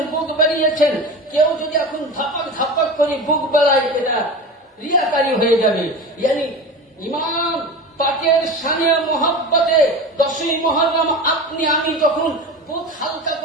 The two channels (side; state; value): both; normal; correlation 0.30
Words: বুক বেরিয়েছেন। কেউ যদি এখন ধাপাক ধাপাক করে বুক বেলায়, এটা রিয়াকারী হয়ে যাবে। ইয়ানি ইমাম পাকের শানে মহব্বতে 10ই মুহররম আপনি আমি যখন বুক হালকা